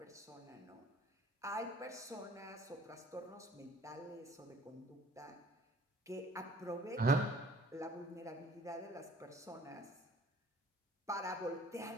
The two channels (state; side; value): normal; both; correlation 0.53